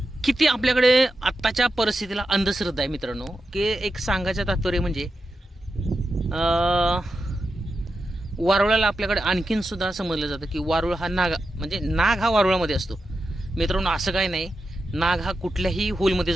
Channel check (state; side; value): normal; both; correlation 0.89